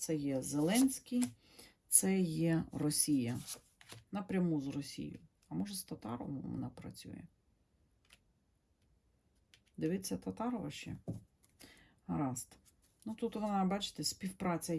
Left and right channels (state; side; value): identical; both; correlation 1.00